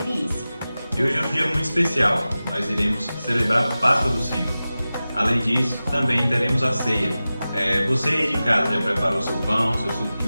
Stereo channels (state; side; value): inverted; both; correlation -0.95